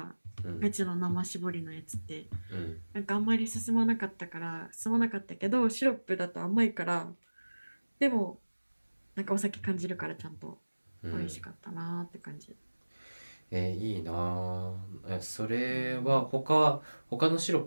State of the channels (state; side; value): inverted; both; correlation -1.00